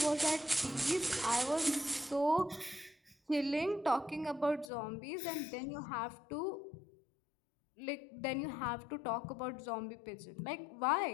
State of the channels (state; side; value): drops out; right; at 4.7 s